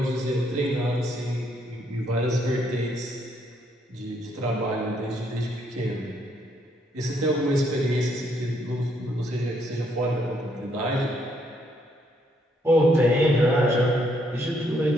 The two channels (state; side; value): normal; both; correlation 0.72